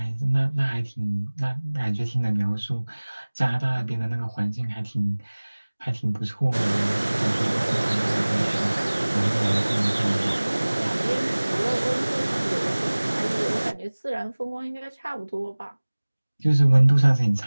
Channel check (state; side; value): inverted; both; correlation -1.00